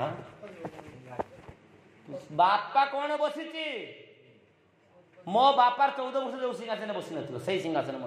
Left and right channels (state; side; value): identical; both; correlation 1.00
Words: बापा कौन बसी मो बापार 14 वर्ष जो सिंहासन बसी न से सिंहासन